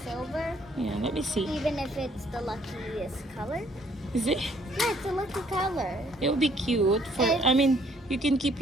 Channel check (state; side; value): normal; both; correlation 0.64